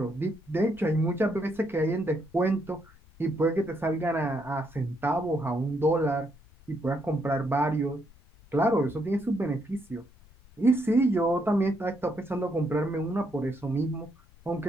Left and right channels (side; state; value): left; noise; rumble, 25 dB below the sound